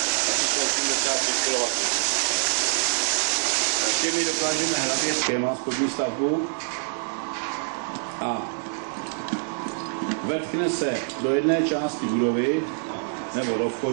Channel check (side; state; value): left; silent; digital silence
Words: Asi jsou 85 kW. Těmi dokážeme hlavě schéma spodní stavbu a vetkne se do jedné části budovy nebo do